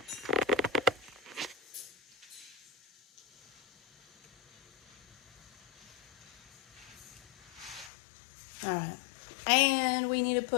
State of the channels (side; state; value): right; drops out; at 7.9 s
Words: All right, and we need to